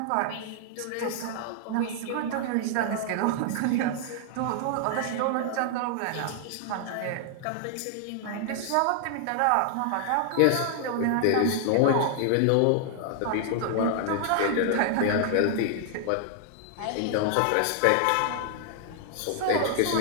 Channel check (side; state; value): both; different; correlation 0.00